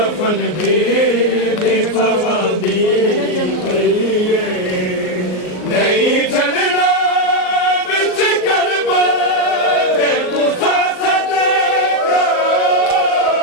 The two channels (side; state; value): right; late; 38 ms